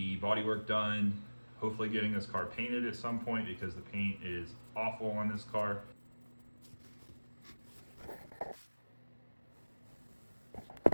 bodywork done, hopefully getting this car painted at some point because the paint is awful on this car.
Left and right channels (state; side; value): inverted; both; correlation -1.00